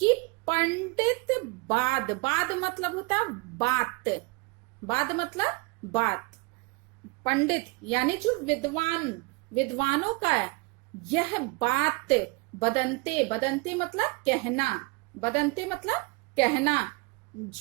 पंडित बाद मतलब होता बात, बाद मतलब बात। पंडित यानी जो विद्वानों का यह बात बदनते मतलब कहना, बदनते मतलब कहना,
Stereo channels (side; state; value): left; quieter; 26.8 dB